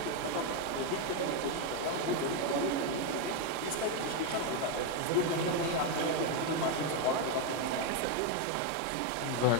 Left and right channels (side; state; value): both; different; correlation 0.02